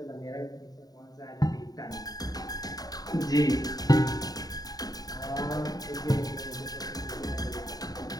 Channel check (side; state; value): right; late; 0.18 ms